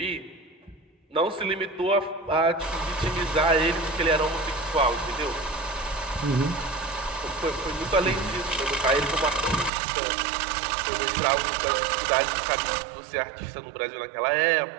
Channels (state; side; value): drops out; left; at 9.7 s